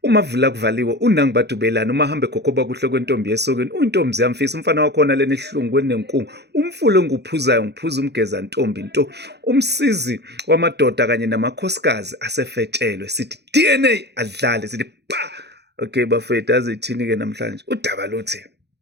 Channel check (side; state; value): left; late; 0.49 ms